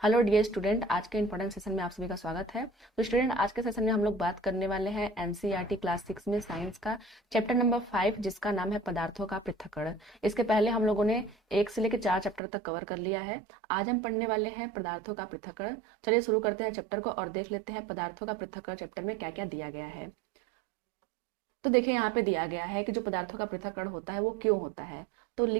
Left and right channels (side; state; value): left; drops out; at 12.4 s